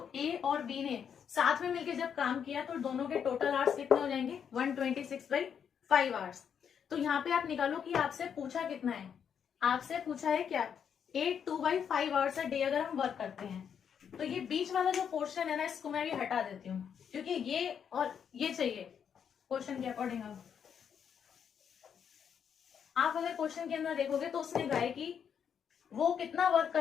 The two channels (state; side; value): quieter; right; 7.7 dB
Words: ए और बी ने साथ में मिलकर जब काम किया तो दोनों के टोटल आवर्स कितने हो जाएंगे 126/5 आवर्स। तो यहाँ पे आप निकालो कि आपसे पूछा कितना है। आपसे पूछा है क्या 8/2/5 आवर्स अ डे अगर हम वर्क करते हैं। तो ये बीच वाला जो पोर्शन है ना इसको मैं भी हटा देती हूँ क्योंकि ये और ये चाहिए क्वेश्चन के अकॉर्डिंग। आप अगर क्वेश्चन के अंदर देखोगे तो उसने कहा है कि वो कितना वर्क